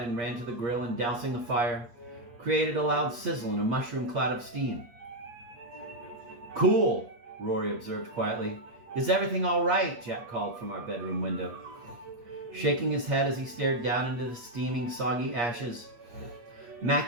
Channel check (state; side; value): late; left; 8.5 ms